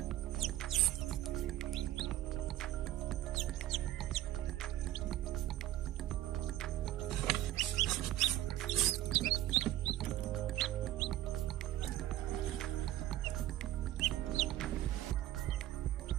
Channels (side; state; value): left; quieter; 13.9 dB